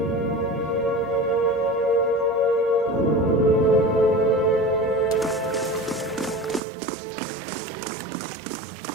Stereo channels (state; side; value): drops out; left; at 6.6 s